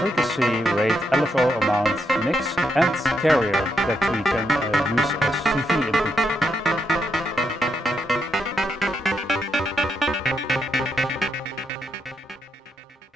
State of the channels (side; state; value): both; normal; correlation 0.79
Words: rate, LFO amount, mix, and carrier that we can use as CV input.